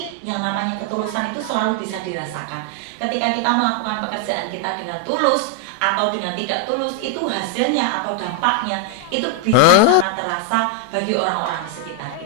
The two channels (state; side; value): different; both; correlation 0.00